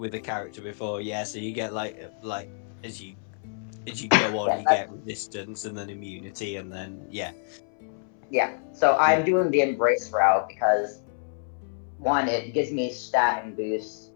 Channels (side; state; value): right; silent; 60 dB below the other